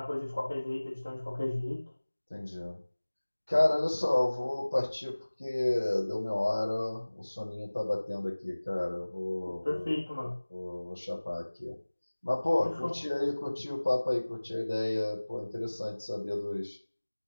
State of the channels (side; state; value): both; inverted; correlation -1.00